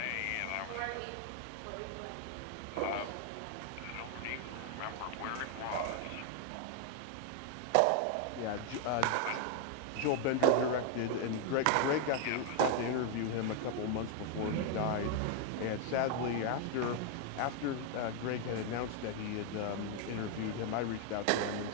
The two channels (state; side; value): different; both; correlation 0.00